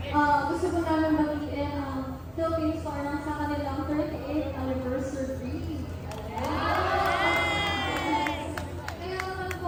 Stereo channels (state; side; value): identical; both; correlation 1.00